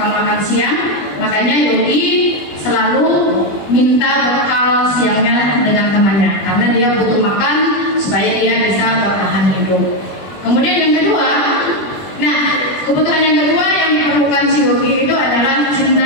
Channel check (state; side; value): late; right; 20 ms